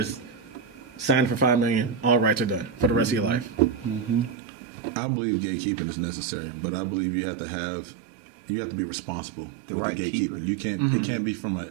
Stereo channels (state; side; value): drops out; left; at 4.4 s